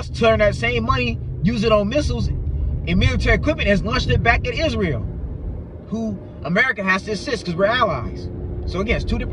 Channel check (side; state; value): both; identical; correlation 1.00